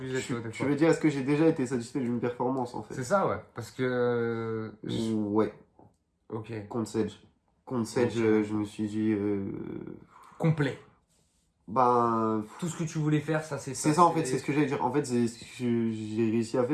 tu vois, des Tu fois? veux dire, est-ce que j'ai déjà été satisfait d'une performance en C'est fait? ça, ouais. Parce que, Ouais, ok, contre Sedge. Contre Sedge, ok. je me suis dit. Complet. Ben. Tout ce que tu voulais faire, ça, C'est ça en fait, c'est ce que j'allais dire. En fait, j'ai réussi à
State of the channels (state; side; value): identical; both; correlation 1.00